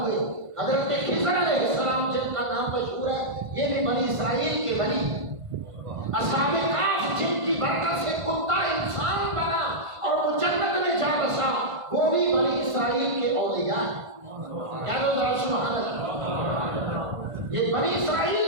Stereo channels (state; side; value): late; left; 1.5 ms